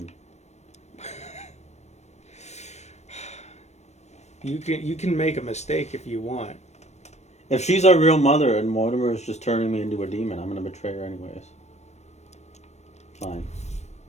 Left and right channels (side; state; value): right; late; 0.32 ms